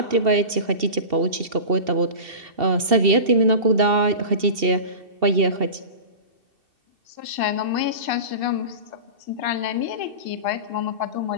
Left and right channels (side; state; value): left; late; 2.7 ms